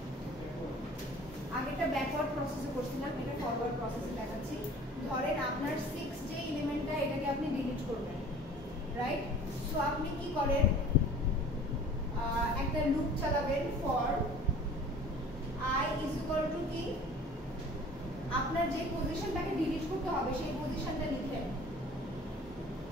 আগেটা ব্যাকওয়ার্ড প্রসেসে করছিলাম, এটা ফরওয়ার্ড প্রসেসে দেখাচ্ছি। ধরেন আপনার 6 যে এলিমেন্টটা, এটাকে আপনি ডিলিট করবেন, রাইট? সো আপনি কি করেন, একটা লুপ চালাবেন for I is equal to কি, আপনার যে পজিশনটাকে ডিলিট করতে হবে সেই পজিশনটা লিখেন,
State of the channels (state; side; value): normal; both; correlation 0.46